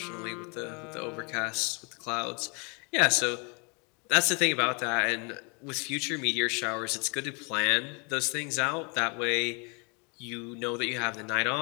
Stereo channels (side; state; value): right; quieter; 33.7 dB